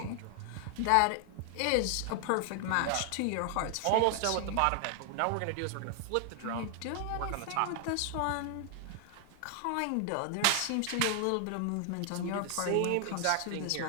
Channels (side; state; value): both; different; correlation 0.00